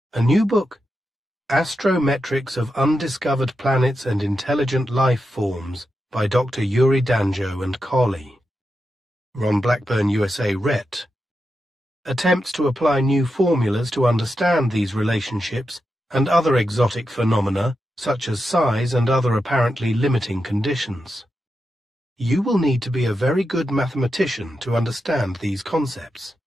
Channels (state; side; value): normal; both; correlation 0.88